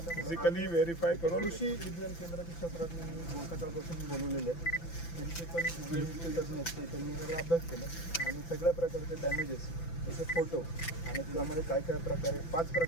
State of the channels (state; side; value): late; right; 5.9 ms